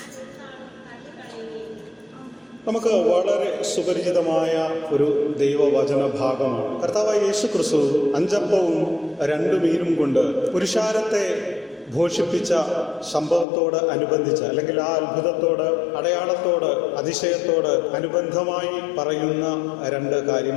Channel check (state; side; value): drops out; right; at 13.5 s